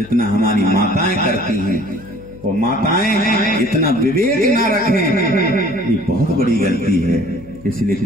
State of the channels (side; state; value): left; noise; hum, 21 dB below the sound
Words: हमारी माताएं करती हैं। वो माताएं इतना विवेक ना रखें, ये बहुत बड़ी गलती है। इसलिए